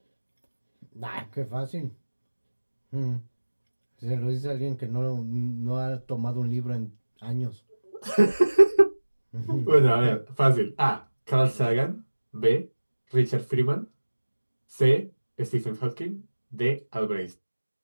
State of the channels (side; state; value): both; inverted; correlation -1.00